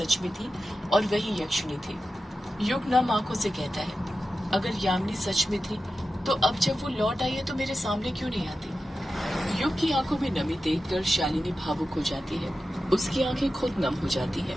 में थी और वही यक्षिणी थी। युग नम आंखों से कहता है, अगर यामिनी सच में थी तो अब जब वो लौट आई है तो मेरे सामने क्यों नहीं आती? युग की आंखों में नमी देखकर शालिनी भावुक हो जाती है। उसकी आंखें खुद नम हो जाती है।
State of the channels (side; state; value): both; normal; correlation 0.92